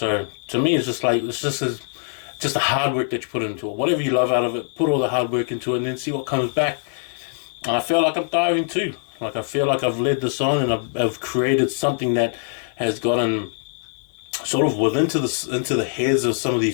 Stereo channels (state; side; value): silent; right; 64 dB below the other